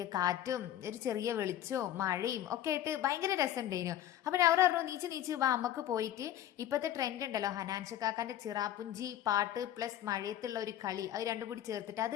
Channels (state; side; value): quieter; right; 11.9 dB